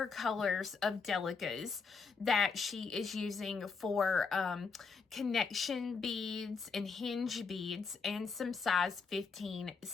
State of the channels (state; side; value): quieter; right; 5.0 dB